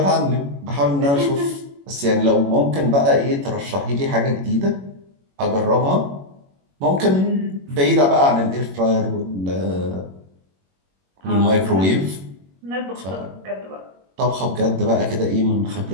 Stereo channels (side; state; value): left; late; 21 ms